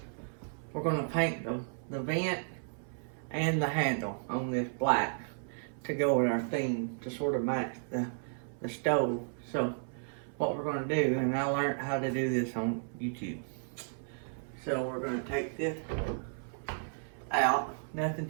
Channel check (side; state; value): left; silent; 55 dB below the other